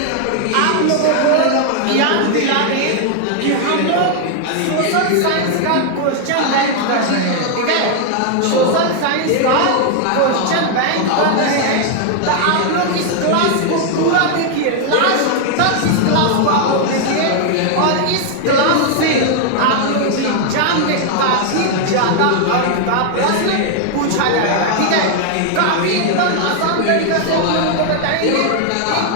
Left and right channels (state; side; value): different; both; correlation 0.00